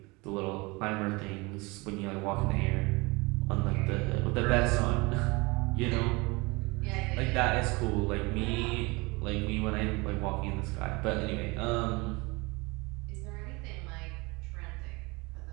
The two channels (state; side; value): quieter; left; 25.5 dB